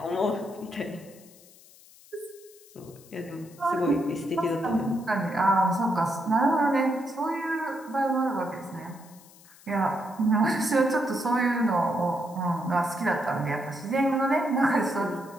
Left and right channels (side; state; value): left; noise; hiss, 24 dB below the sound